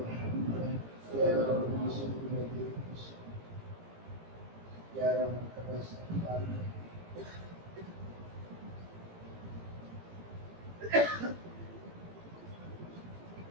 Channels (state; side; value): late; left; 18 ms